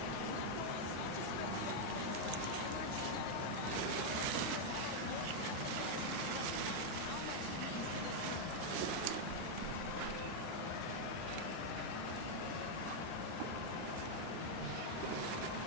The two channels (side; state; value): both; different; correlation 0.00